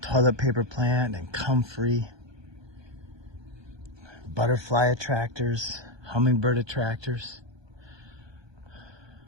Toilet paper plant and comfrey, butterfly attractors, hummingbird attractors.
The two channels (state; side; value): late; left; 1.2 ms